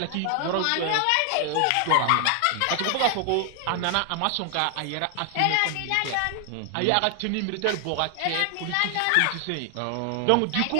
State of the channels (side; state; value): both; different; correlation 0.00